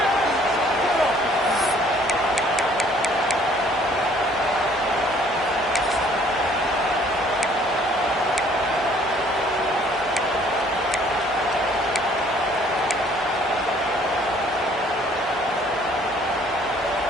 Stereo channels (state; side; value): normal; both; correlation 0.59